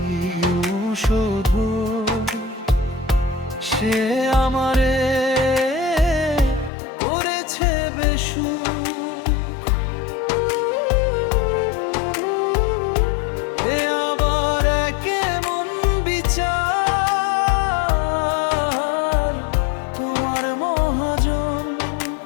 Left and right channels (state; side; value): drops out; right; at 6.7 s